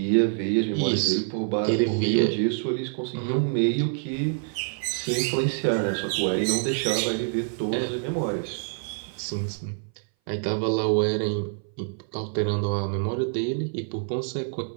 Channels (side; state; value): left; silent; 59 dB below the other